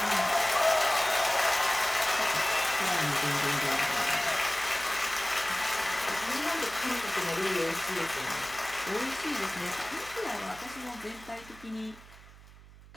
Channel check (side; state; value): right; noise; hum, 20 dB below the sound